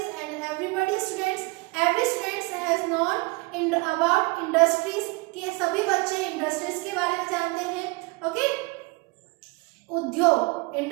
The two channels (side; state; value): left; quieter; 26.4 dB